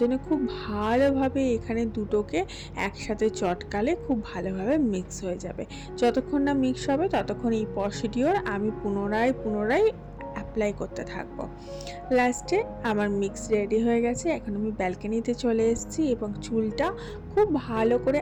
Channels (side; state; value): both; identical; correlation 1.00